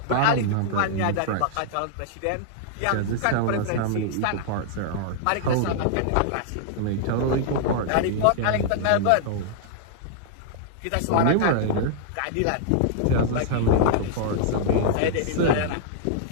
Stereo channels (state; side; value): different; both; correlation -0.01